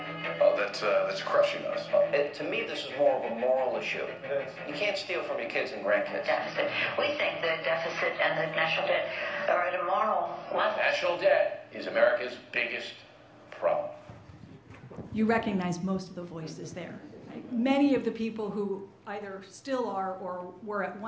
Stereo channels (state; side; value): identical; both; correlation 1.00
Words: that's crushing us. To me, this is more of a moral issue. You can't steal from your kids and grandkids. Deficit. We think the deficit and the national debt are at a moral level. National debt is America's biggest problem. You recognize most of the voices there. Right? Many of the people who either still are or were at